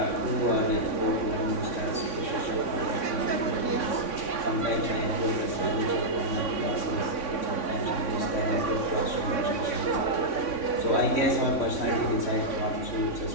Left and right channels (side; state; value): right; late; 3.6 ms